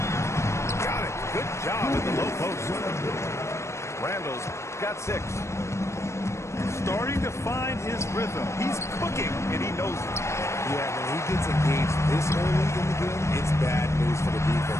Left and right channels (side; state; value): right; late; 0.13 ms